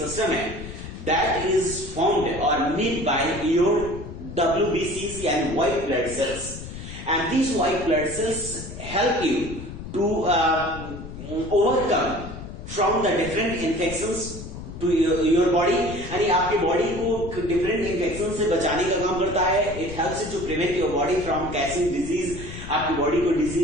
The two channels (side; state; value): left; noise; rumble, 11 dB below the sound